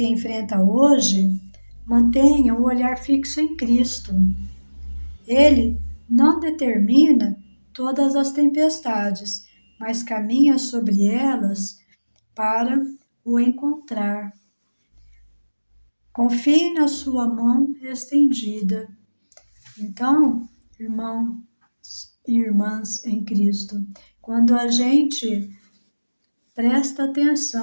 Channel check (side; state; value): both; inverted; correlation -1.00